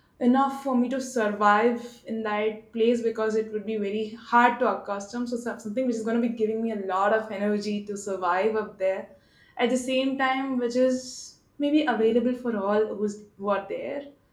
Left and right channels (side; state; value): both; identical; correlation 1.00